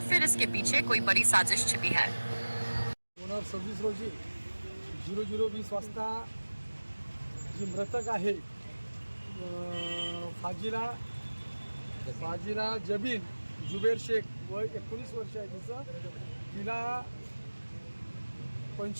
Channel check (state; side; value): inverted; both; correlation -1.00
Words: फिर इसके पीछे कोई बड़ी साजिश छिपी है। 26 रोजी 00:20 वाजता जी मृतक आहे फाजिला जबीन जुबेर शेख वय 19 वर्ष आहे तिचं। तिला